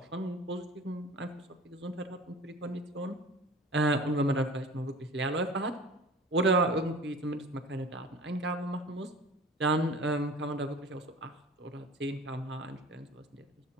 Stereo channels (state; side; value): normal; both; correlation 0.41